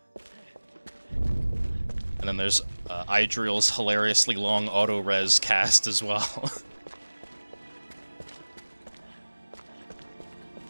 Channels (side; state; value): both; inverted; correlation -1.00